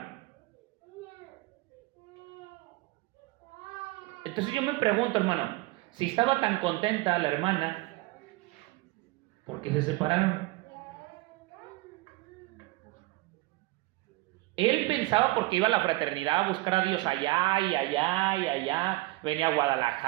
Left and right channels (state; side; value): quieter; left; 20.7 dB